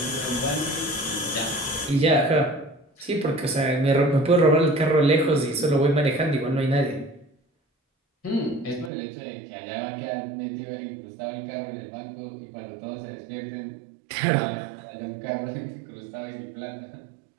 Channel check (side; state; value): left; drops out; at 8.9 s